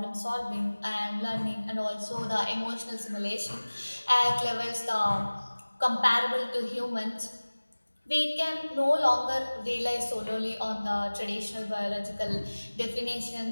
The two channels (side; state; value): both; inverted; correlation -1.00